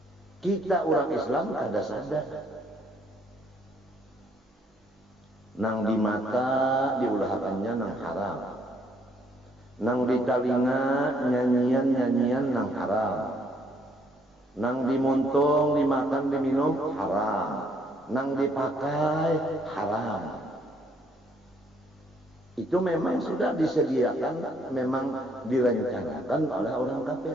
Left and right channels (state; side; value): normal; both; correlation 0.67